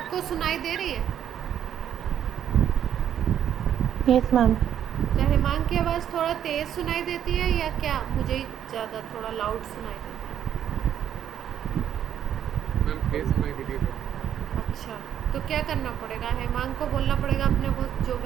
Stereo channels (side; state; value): left; quieter; 9.9 dB